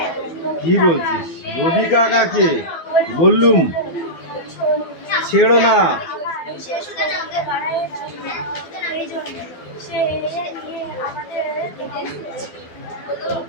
কি বলছিস? রবি কাকাকে বললুম ছেড়ো না। সে শুধু আমাকে বাড়ায় এই জন্য সে নিয়ে আমাদের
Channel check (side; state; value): right; late; 12 ms